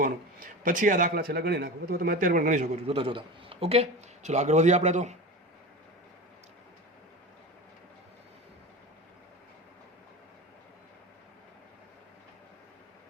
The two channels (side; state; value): both; normal; correlation 0.29